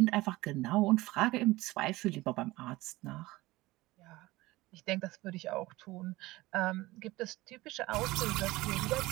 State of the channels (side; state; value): left; quieter; 19.4 dB